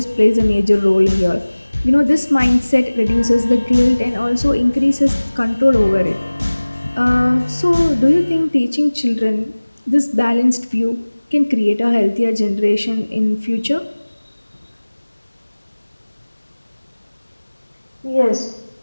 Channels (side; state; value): both; inverted; correlation -1.00